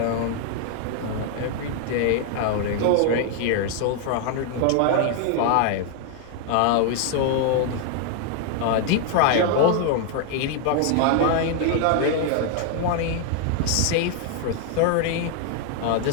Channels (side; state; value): both; different; correlation 0.00